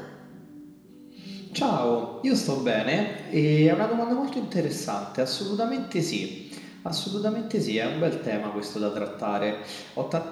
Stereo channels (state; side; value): identical; both; correlation 1.00